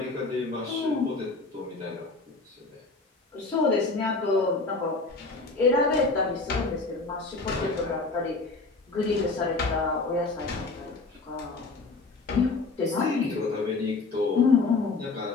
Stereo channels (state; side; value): quieter; right; 3.7 dB